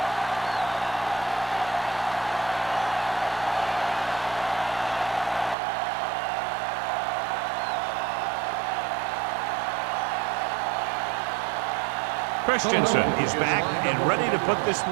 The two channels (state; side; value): drops out; left; at 5.6 s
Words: Christensen is back and ready to put this